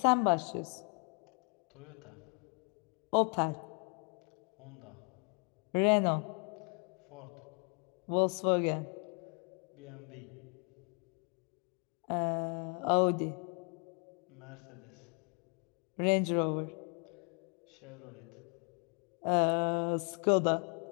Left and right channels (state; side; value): quieter; right; 38.5 dB